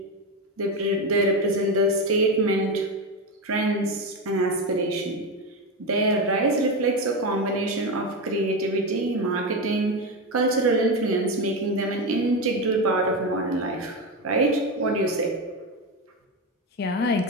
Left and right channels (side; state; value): both; normal; correlation 0.15